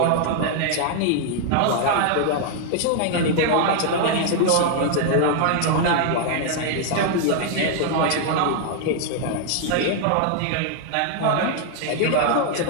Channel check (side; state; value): both; different; correlation 0.00